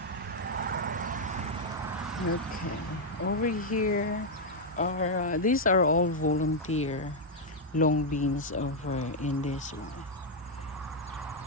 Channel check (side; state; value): both; normal; correlation -0.01